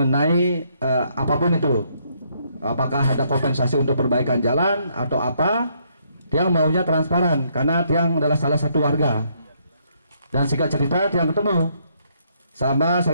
apapun itu, apakah ada kompensasi untuk perbaikan jalan atau apa. Tiang maunya transparan karena Tiang adalah salah satu warga. Dan singkat cerita Tiang ketemu sama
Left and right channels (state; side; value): inverted; both; correlation -0.71